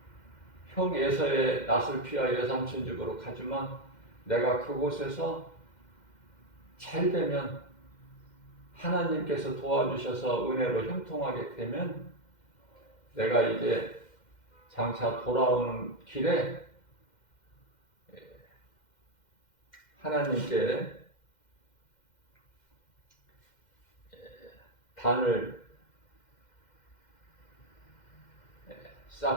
형 에서의 낯을 피하여 외삼촌 집으로 가지만, 내가 그곳에서 잘 되면, 하나님께서 도와주셔서 은혜로 형통하게 되면 내가 이제 장차 돌아오는 길에 하나님께 단을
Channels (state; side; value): late; right; 2.1 ms